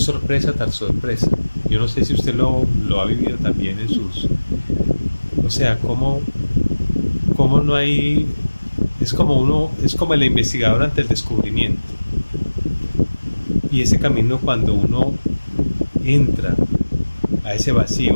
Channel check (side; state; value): both; inverted; correlation -1.00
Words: sorpresa tras sorpresa. Yo no sé si usted lo ha vivido también en sus... O sea, cómo no hay... Es como el investigador ante el descubrimiento. Y ese camino cuando uno entra a ese vacío,